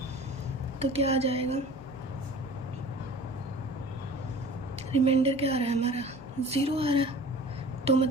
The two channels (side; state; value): both; normal; correlation 0.42